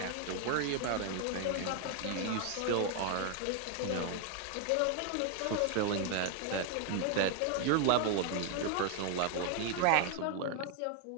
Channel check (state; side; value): different; both; correlation 0.00